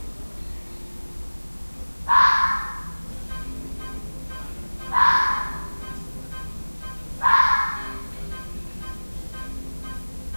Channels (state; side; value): inverted; both; correlation -1.00